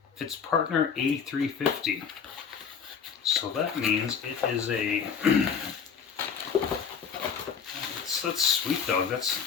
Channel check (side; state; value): right; quieter; 6.7 dB